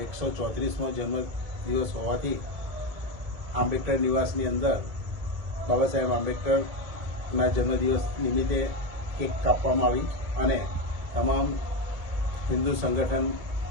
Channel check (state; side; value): late; left; 2.2 ms